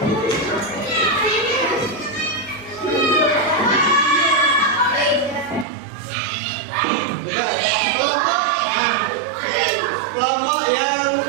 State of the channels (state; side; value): drops out; left; at 5.7 s